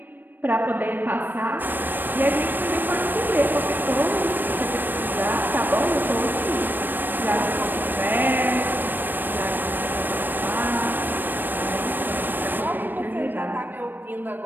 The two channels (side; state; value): left; late; 0.092 ms